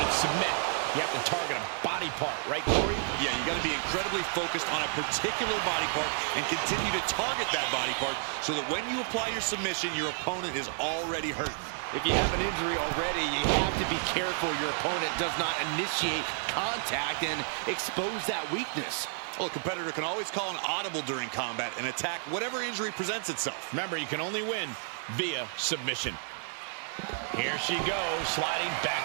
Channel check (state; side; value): silent; left; 57 dB below the other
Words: submit. You have to target a body part, right, Corey? Yeah, you got to be incredibly focused on a particular body part and continue to target that body part so that when you apply your submission, your opponent is already hurt. If you have an injury already, you have to be careful your opponent does not initiate contact and expose that weakness. Well, a competitor can always call an audible during combat and attack whatever injury presents itself. Remember, you can only win via submission. Here she goes, sliding